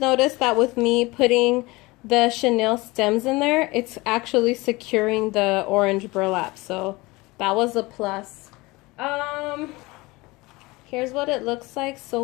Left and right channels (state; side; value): quieter; right; 22.5 dB